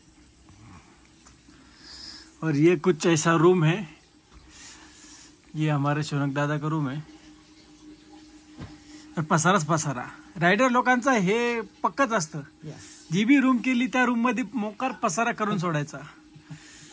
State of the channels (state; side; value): identical; both; correlation 1.00